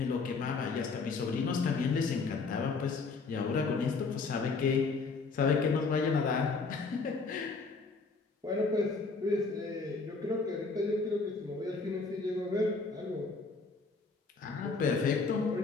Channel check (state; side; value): quieter; right; 4.3 dB